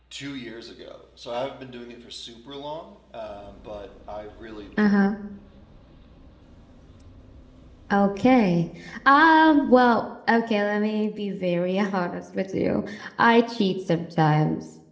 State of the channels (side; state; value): both; identical; correlation 1.00